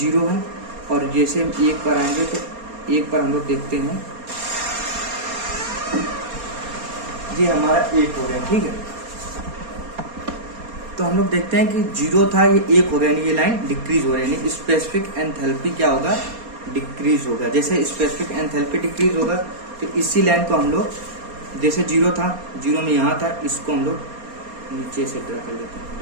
है, और जैसे हम 1 पर आएंगे तो 1 पर हम लोग देखते हैं ये हमारा 1 हो गया, ठीक है। तो हम लोग देखते हैं कि 0 था, ये 1 हो गया, यानी ये लाइन डिक्रीज हो रही है, यानी स्पेसिफिक एंथैल्पी क्या होगा, डिक्रीज होगा। जैसे स्पेसिफिक एंथैल्पी डिक्रीज होगा तो इसी लाइन को हम लोग, जैसे 0 था, 0 में यहाँ था, इसको हम लोग नीचे से ड्रा कर देते हैं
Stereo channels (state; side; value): late; left; 4.3 ms